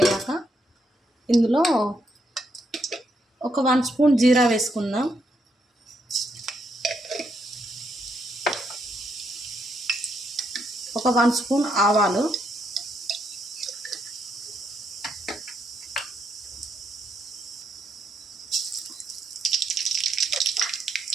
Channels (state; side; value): normal; both; correlation 0.78